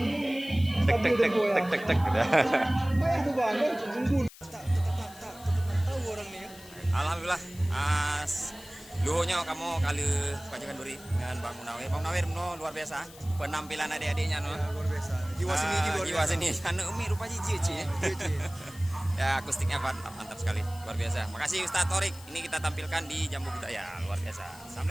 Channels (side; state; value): left; noise; hiss, 20 dB below the sound